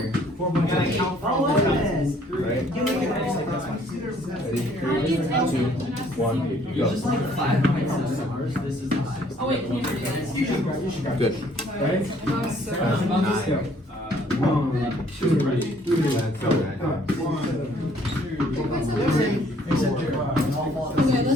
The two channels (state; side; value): normal; both; correlation 0.61